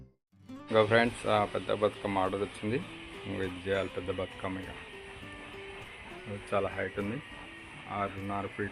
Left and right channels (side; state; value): both; identical; correlation 1.00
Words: ఇంకా ఫ్రెండ్స్ పెద్ద బతుకమ్మ ఆర్డర్ వచ్చింది. ఇది చేయాలి పెద్ద బతుకమ్మ. ఇక చాలా హైట్ ఉంది, 6.5